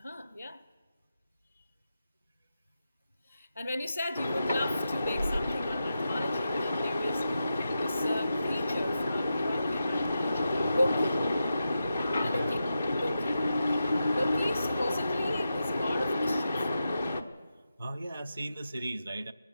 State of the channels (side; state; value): both; inverted; correlation -0.89